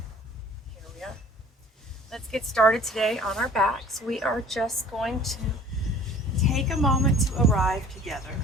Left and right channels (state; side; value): normal; both; correlation 0.49